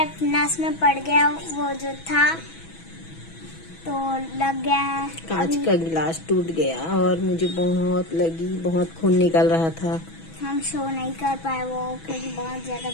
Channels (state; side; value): late; right; 6.1 ms